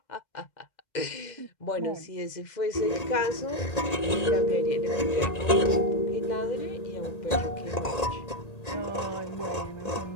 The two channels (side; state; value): right; late; 1.8 ms